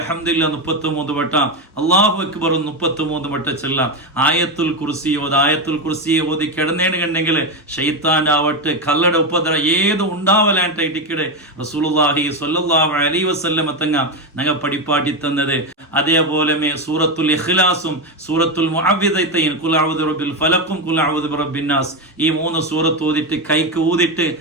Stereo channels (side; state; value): both; normal; correlation 0.11